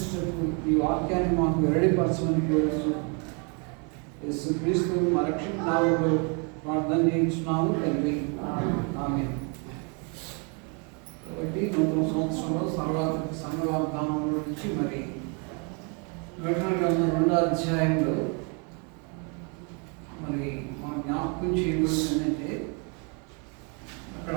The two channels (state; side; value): quieter; left; 35.5 dB